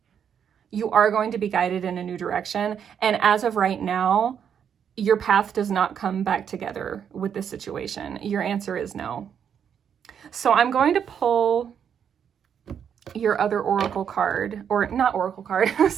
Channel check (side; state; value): left; quieter; 8.1 dB